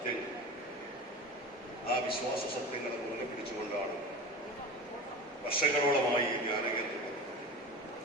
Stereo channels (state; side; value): normal; both; correlation 0.31